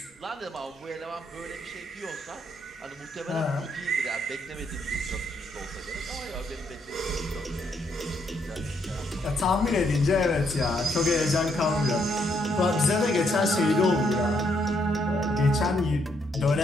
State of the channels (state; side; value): normal; both; correlation 0.74